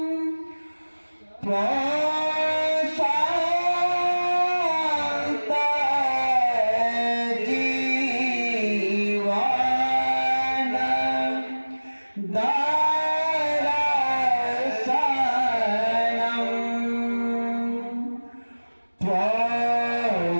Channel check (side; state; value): both; inverted; correlation -1.00